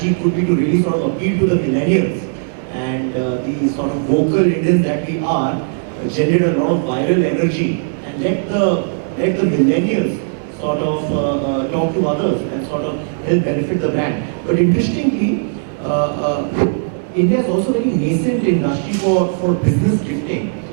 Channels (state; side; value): silent; left; digital silence